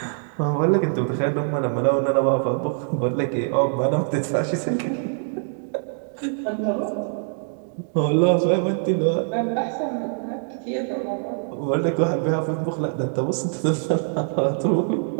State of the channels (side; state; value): left; silent; digital silence